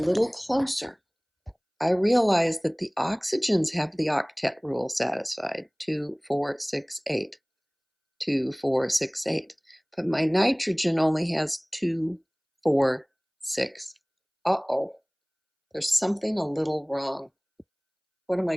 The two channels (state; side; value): identical; both; correlation 1.00